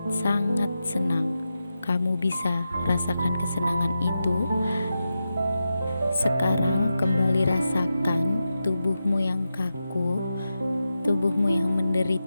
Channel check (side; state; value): both; inverted; correlation -0.90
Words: senang. Kamu bisa rasakan kesenangan itu. Sekarang kembali rasakan tubuhmu yang kaku, tubuhmu yang